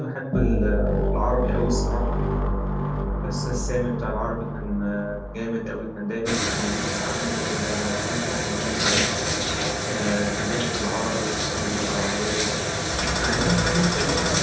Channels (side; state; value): both; identical; correlation 1.00